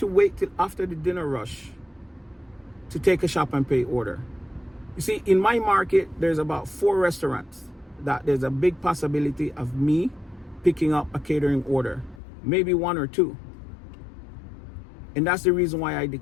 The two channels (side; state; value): right; drops out; at 12.2 s